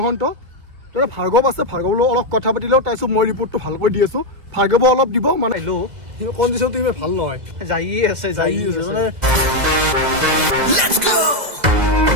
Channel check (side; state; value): left; late; 2.0 ms